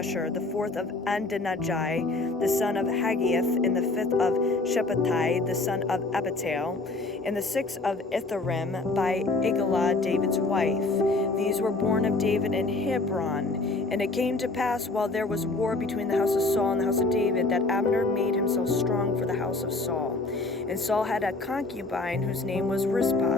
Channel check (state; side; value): quieter; right; 3.3 dB